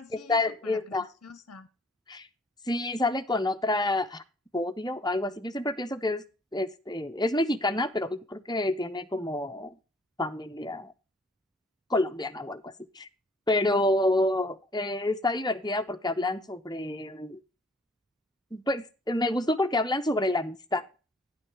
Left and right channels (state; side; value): normal; both; correlation 0.57